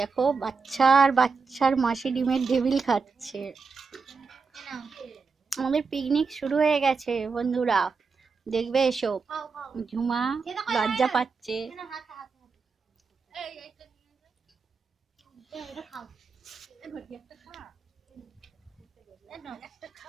দেখো বাচ্চার মাসি ডিমের টেবিল খাচ্ছে। আমাদের পিকনিক শুরু হয়ে গেছে বন্ধুরা, দেখবে এসো। ঝুমা লজ্জা পাচ্ছে।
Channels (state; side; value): quieter; left; 4.9 dB